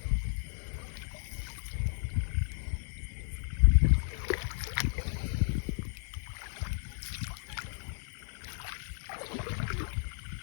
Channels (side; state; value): right; silent; 55 dB below the other